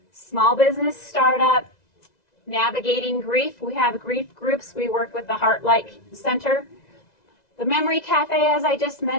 small business startup, navigating grief. We have grief groups. We work with the Heartlight Center. The Memory Cafe, as I just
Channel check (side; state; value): right; late; 2.0 ms